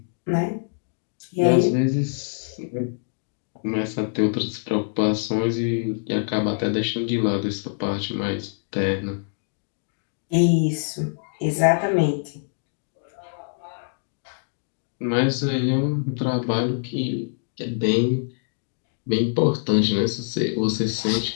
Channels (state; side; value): silent; right; digital silence